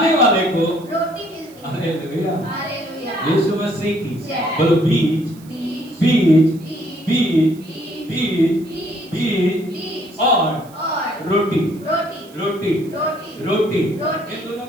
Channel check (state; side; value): noise; right; hiss, 25 dB below the sound